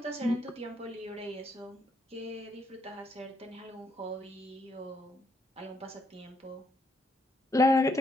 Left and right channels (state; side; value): normal; both; correlation 0.74